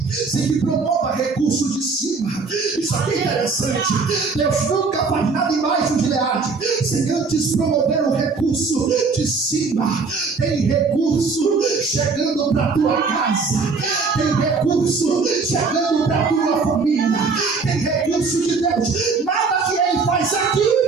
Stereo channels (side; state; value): left; quieter; 4.5 dB